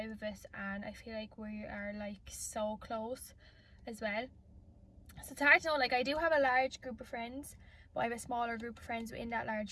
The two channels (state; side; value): identical; both; correlation 1.00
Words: of us and I feel like we are like so close as well. So it's hard to know. Like, I do have a large group of friends, but I have a smaller group of friends within that